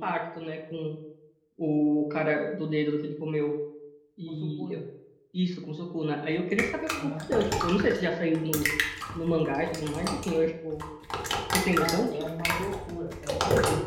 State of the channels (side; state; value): both; identical; correlation 1.00